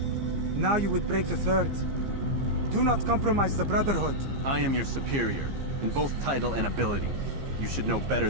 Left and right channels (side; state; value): left; late; 15 ms